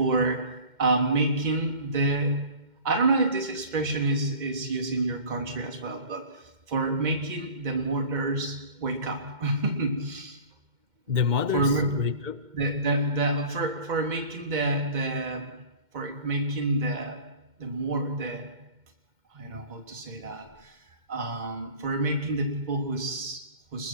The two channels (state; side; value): late; left; 2.1 ms